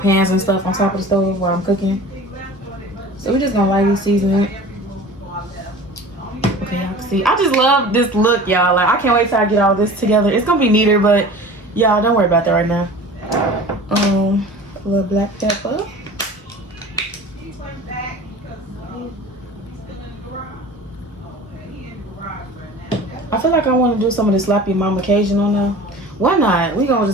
and stuff on top of the stove while I'm cooking. So we're just gonna lightly season it. Okay, y'all can see. I just love this look, y'all. Like, I can't wait till I get all this together. It's gonna be neater, but y'all don't worry about that right now. A little black pepper. I feel like I want to do some of the Slap Your Mama Cajun on there. Why not? We gonna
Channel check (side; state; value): both; normal; correlation 0.40